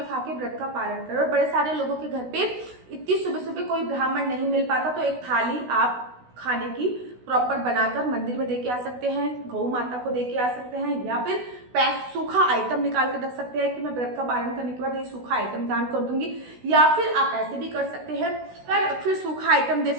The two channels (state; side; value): late; left; 16 ms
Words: खा के व्रत का पालन करो। और बड़े सारे लोगों के घर पे इतनी सुबह सुबह कोई ब्राह्मण नहीं मिल पाता, तो एक थाली आप खाने की प्रॉपर बनाकर मंदिर में देके आ सकते हैं, गौ माता को देके आ सकते हैं, या फिर सूखा आइटम निकाल कर रख सकते हैं कि मैं व्रत का पालन करने के बाद ये सूखा आइटम दान कर दूंगी। या फिर आप ऐसे भी कर सकते हैं, फिर सूखा आइटम दे